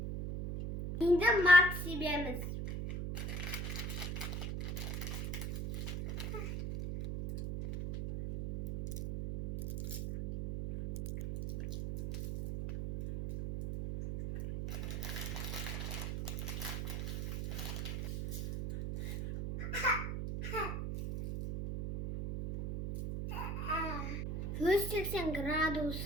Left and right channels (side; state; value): right; noise; hum, 3 dB below the sound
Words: Енді мак себеміз. Жүз 180